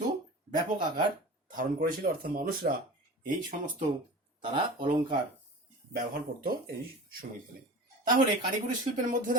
ব্যাপক আকার ধারণ করেছিল, অর্থাৎ মানুষরা এই সমস্ত তারা অলংকার ব্যবহার করত এই সময়কালে। তাহলে কারিগরি শিল্পের মধ্যে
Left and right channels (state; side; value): normal; both; correlation 0.36